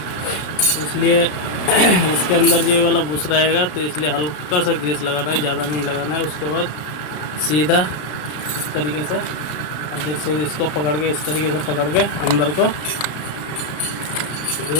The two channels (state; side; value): late; right; 33 ms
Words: इसलिए इसके अंदर ये वाला बुश रहेगा तो इसलिए हल्का सा ग्रीस लगाना है, ज़्यादा नहीं लगाना है। उसके बाद सीधा इस तरीके से अब जैसे इसको पकड़ के इस तरीके से पकड़ के अंदर को